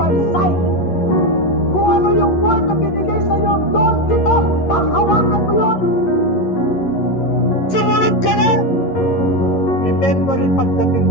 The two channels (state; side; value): late; right; 11 ms